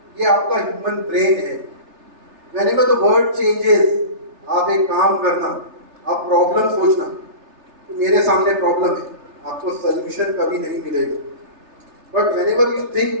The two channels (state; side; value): late; left; 3.3 ms